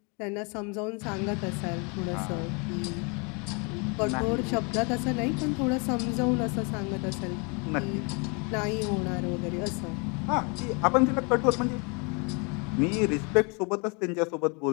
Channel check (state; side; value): quieter; right; 32.9 dB